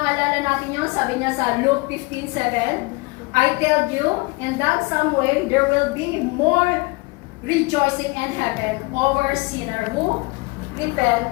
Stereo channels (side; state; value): right; quieter; 25.8 dB